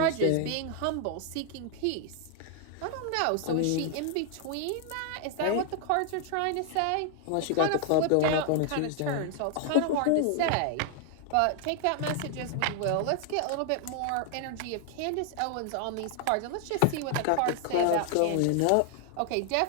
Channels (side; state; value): both; different; correlation 0.00